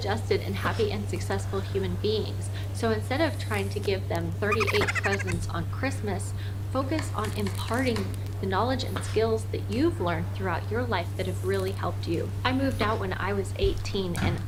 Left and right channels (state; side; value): identical; both; correlation 1.00